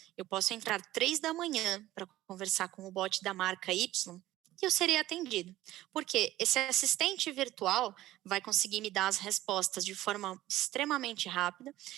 eu posso entrar 3 da manhã para conversar com o bot da marca Y e eu serei atendido. Porque esse assistente virtual vai conseguir me dar as respostas de forma extremamente rápida.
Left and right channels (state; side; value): quieter; left; 15.5 dB